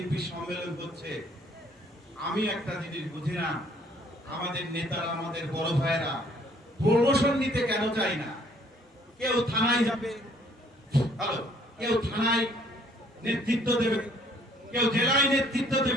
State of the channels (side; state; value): both; normal; correlation 0.61